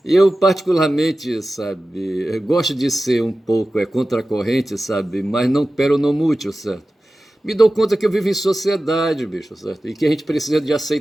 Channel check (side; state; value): both; normal; correlation 0.95